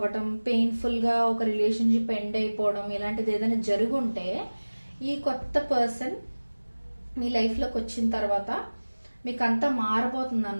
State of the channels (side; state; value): both; inverted; correlation -1.00